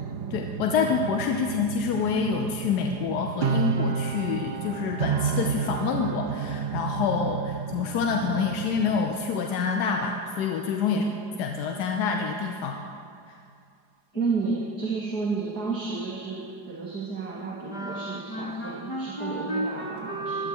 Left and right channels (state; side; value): late; right; 4.9 ms